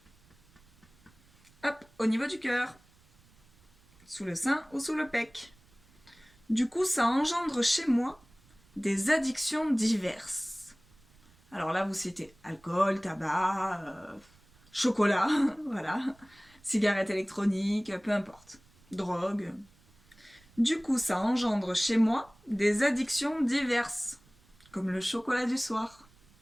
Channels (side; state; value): right; noise; rumble, 29 dB below the sound